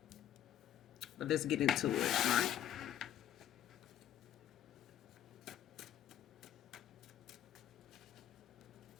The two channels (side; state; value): right; quieter; 10.9 dB